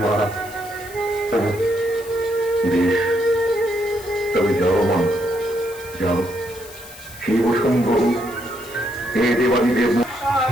মা? বেশ, তবে যাও মা, যাও। শিব শম্ভু, হে দেবাদি দেব,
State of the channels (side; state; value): left; noise; hiss, 18 dB below the sound